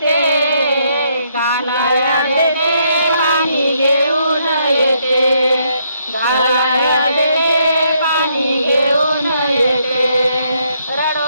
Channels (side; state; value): both; inverted; correlation -0.73